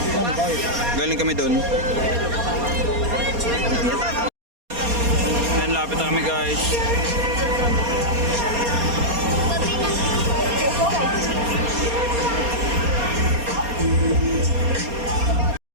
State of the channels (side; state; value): left; late; 4.2 ms